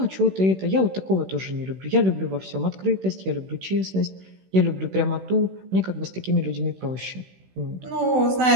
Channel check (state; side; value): late; left; 16 ms